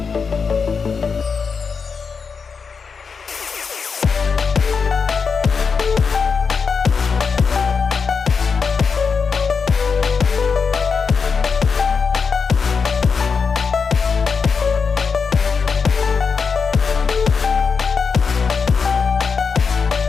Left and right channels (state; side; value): quieter; right; 5.5 dB